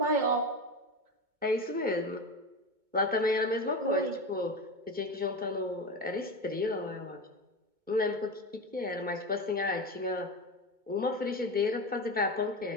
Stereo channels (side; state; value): left; late; 2.2 ms